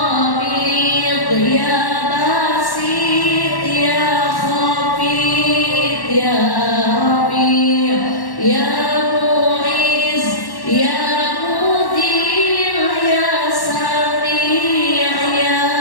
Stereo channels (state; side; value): late; right; 1.1 ms